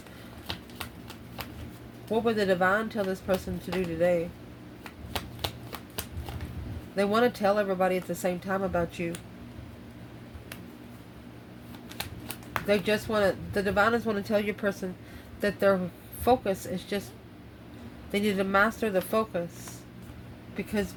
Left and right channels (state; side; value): identical; both; correlation 1.00